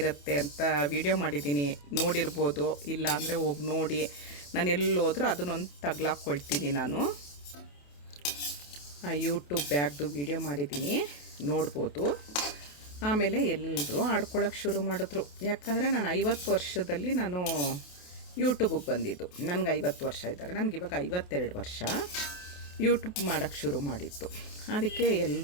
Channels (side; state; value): right; late; 28 ms